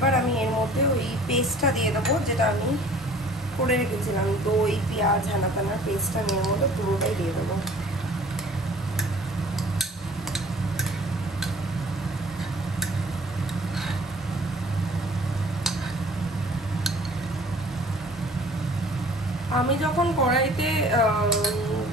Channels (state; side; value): normal; both; correlation 0.51